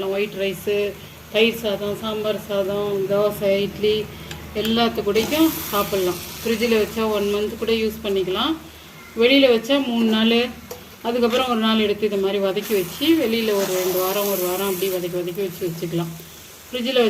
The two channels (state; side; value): identical; both; correlation 1.00